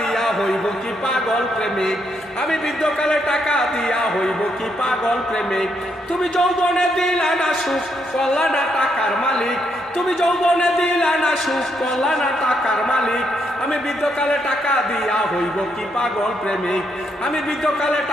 হইব কি পাগল প্রেমিক, আমি বৃদ্ধকালে টাকা দিয়া হইব কি পাগল প্রেমিক। তুমি যৌবনে দিলা না সুখ করলা না টাকার মালিক, তুমি যৌবনে দিলা না সুখ করলা না টাকার মালিক। আমি বৃদ্ধকালে টাকা দিয়া হইব কি পাগল প্রেমিক, আমি বৃদ্ধকালে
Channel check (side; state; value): both; normal; correlation 0.77